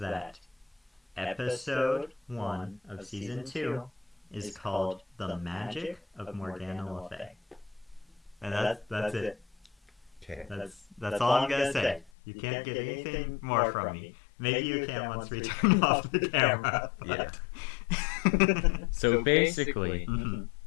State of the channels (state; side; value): drops out; right; at 12.1 s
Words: episode 1 of season 2 is called The Magic of Morgana Le Fay. And that's it. Okay. That's all I'm gonna say. You can't get anything more from me. Maybe you can once we turn off the camera. Yeah. So basically,